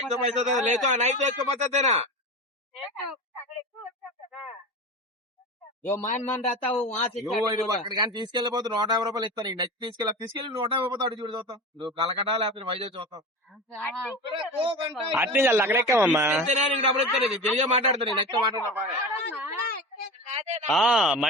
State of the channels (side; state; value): both; normal; correlation 0.29